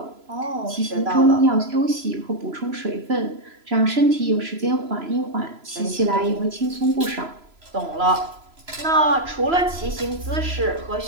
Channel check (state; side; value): late; left; 3.0 ms